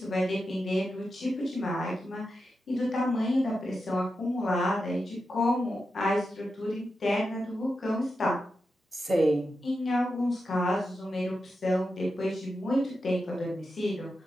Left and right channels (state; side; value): normal; both; correlation 0.89